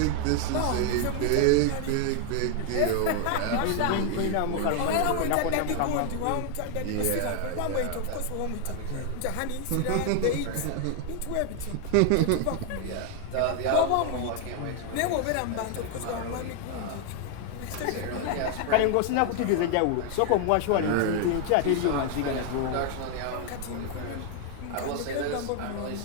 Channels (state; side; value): different; both; correlation 0.00